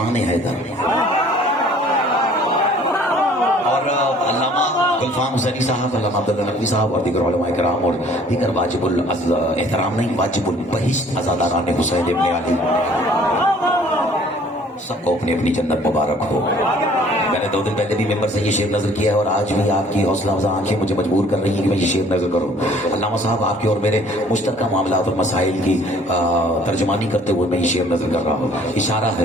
حیدر. اور علامہ گلفام حسینی صاحب، علامہ عبداللہ نقوی صاحب اور دیگر علماء کرام اور دیگر واجب الاحترام نہیں، واجب البہشت عزاداران حسین ابن علی، سب کو اپنی اپنی جنت مبارک ہو. میں نے 2 دن پہلے بھی ممبر سے یہ شعر نظر کیا ہے اور آج بھی آپ کی حوصلہ افزا آنکھیں مجھے مجبور کر رہی ہیں کہ میں یہ شعر نظر کروں. علامہ صاحب، آپ کے اور میرے مشترکہ معاملات اور مسائل کی ترجمانی کرتے ہوئے میں یہ شعر نظر کر رہا ہوں. اشارہ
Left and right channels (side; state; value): both; normal; correlation 0.55